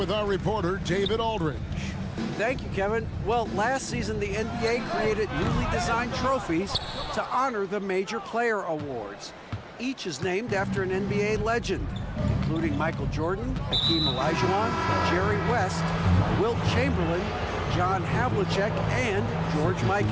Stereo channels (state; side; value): identical; both; correlation 1.00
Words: our reporter, David Aldridge. Thank you, Kevin. Well, last season, the NBA created newly designed trophies to honor the major player awards. Each is named after an NBA legend, including Michael Jordan, Hakeem Olajuwon, Jerry West, Wilt Chamberlain, John Havlicek, and George